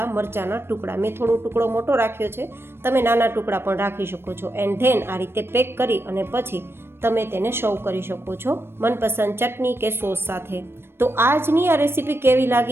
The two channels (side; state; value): left; late; 0.12 ms